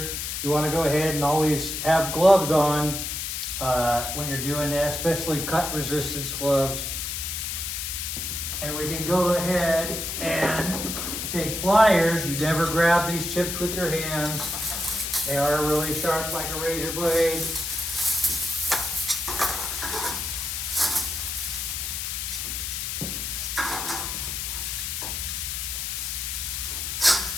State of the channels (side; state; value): left; noise; hiss, 3 dB below the sound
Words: you want to go ahead and always have gloves on when you're doing that, especially cut resistance gloves. And we can go ahead and take pliers. You never grab these chips with your hands. They are really sharp like a razor blade.